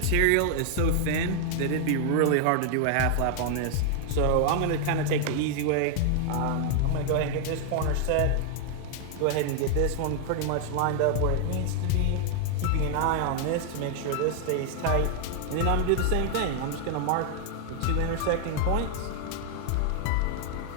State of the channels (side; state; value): both; different; correlation 0.00